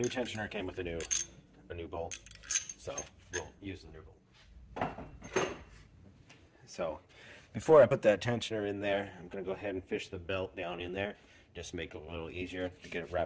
tensioner came with a new bolt, so we'll use the new bolt. So before I put that tensioner in there, I'm going to go ahead and fish the belt down in there, just to make it a little easier to get it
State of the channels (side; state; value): both; identical; correlation 1.00